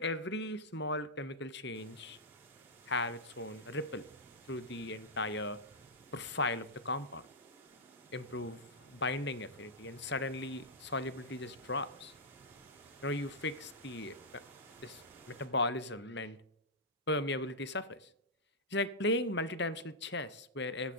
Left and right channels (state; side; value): normal; both; correlation -0.08